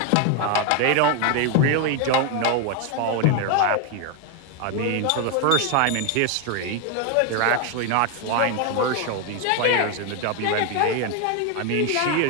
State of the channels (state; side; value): different; both; correlation 0.01